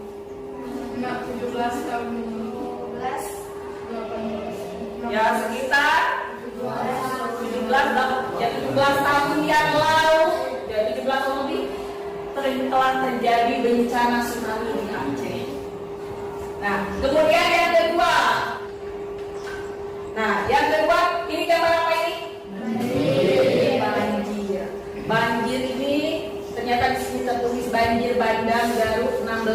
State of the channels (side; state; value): both; identical; correlation 1.00